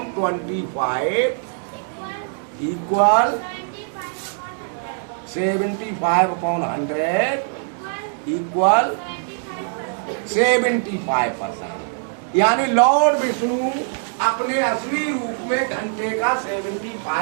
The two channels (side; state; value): left; silent; digital silence